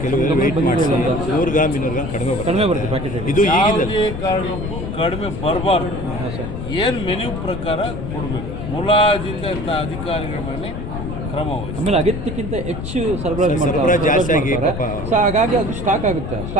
ಕೆಲವರು ವೇಟ್ ಮಾಡಿಸಿ 100 ಗ್ರಾಮ್ 200 ಗ್ರಾಮ್ ಕಡಿಮೆ ಬರುತ್ತೆ ಪ್ಯಾಕೆಟ್. ಇದು ಈಗಿಂದ ಯಾವುದೇ ಕಾರಣಕ್ಕೂ ಕಡಿಮೆ ಬರಬಾರ್ದು. ಏನು ಮೆನ್ಯೂ ಪ್ರಕಾರ ಕೊಡಬೇಕು. ಮುಲಾಜಿತ ಅಧಿಕಾರಿಗಳ ಮೇಲೆ ಕ್ರಮ ವಹಿಸಿ. ಆಮೇಲೆ ಅಗತ್ಯಕ್ಕಿಂತ ಹೆಚ್ಚು ಸರಬರಾಜು ಜಾಸ್ತಿ ಆಗಿ ಸೊ ಹಾಗಾಗಿ ಅದು ಸ್ಟಾಕ್ ಆಗುತ್ತೆ.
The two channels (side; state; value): left; noise; rumble, 6 dB below the sound